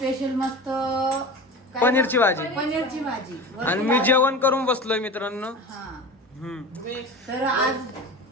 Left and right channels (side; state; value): both; normal; correlation 0.32